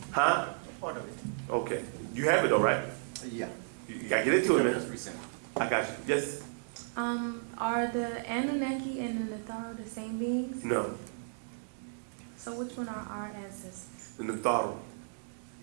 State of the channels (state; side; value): silent; left; digital silence